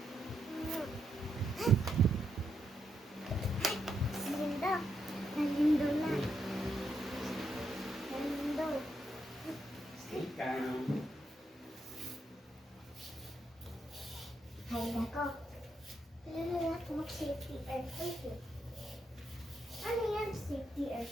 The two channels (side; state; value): both; normal; correlation 0.81